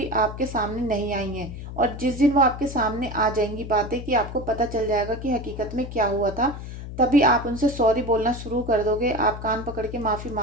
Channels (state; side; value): noise; left; hum, 10 dB below the sound